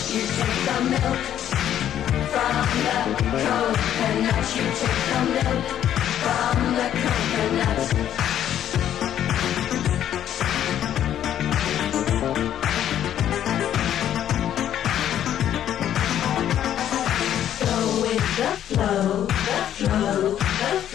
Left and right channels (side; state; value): right; quieter; 10.7 dB